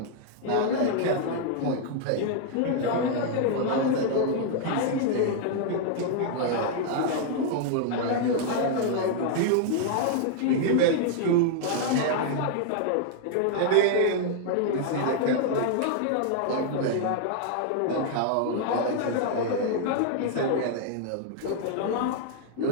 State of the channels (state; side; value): different; both; correlation 0.00